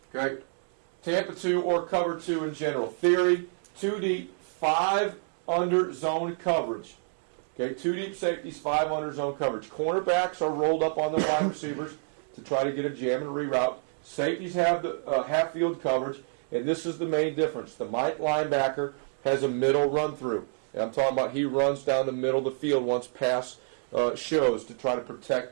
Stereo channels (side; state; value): left; silent; 59 dB below the other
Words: Okay? Tampa 2 or cover 2 in general. Theory, 2 deep, 5 under zone coverage. Okay, 2 deep safeties, 5 under zone coverage. Cornerbacks are rolled up on the wide receivers to try to get a jam and reroute. Safeties have the half field coverage, and this is the main difference. The Mike linebacker has a middle run through. And I'm talking about he runs down the middle of the field once pass shows to try to